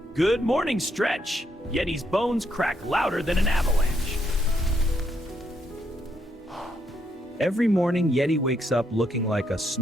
Good morning, Stretch. Yeti's bones crack louder than an avalanche. Every morning, Yeti wakes up looking like a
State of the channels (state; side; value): normal; both; correlation 0.76